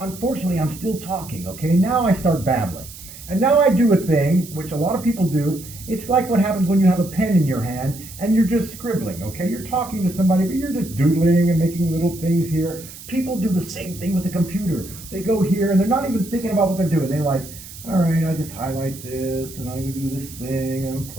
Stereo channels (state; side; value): noise; right; hiss, 15 dB below the sound